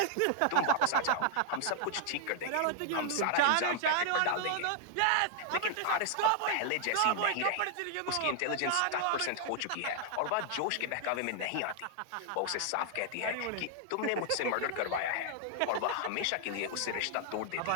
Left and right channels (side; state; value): both; different; correlation 0.00